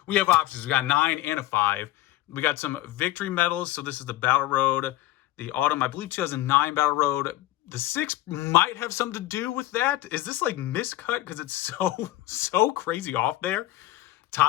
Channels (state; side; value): quieter; right; 16.1 dB